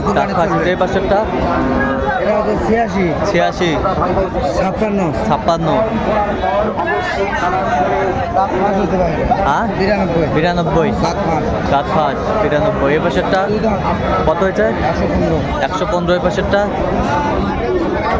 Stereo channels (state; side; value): identical; both; correlation 1.00